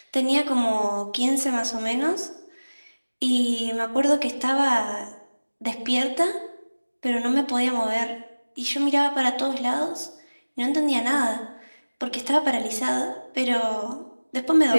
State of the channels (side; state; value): both; inverted; correlation -1.00